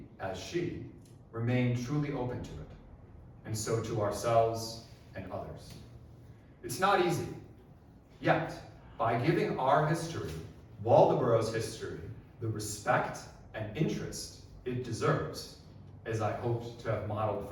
as she, remain truly open to it, and so to ourselves and others. It's not easy, yet, by giving our history, Waldoboro's history, the respect and interest it deserves, as I hoped to have modeled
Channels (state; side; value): identical; both; correlation 1.00